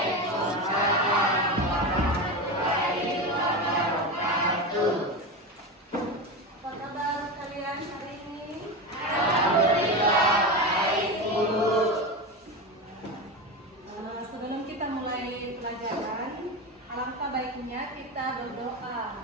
warahmatullahi wabarakatuh. Apa kabar kalian hari ini? Alhamdulillah baik, Bu. Sebelum kita mulai pelajaran, alangkah baiknya kita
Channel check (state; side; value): normal; both; correlation 0.20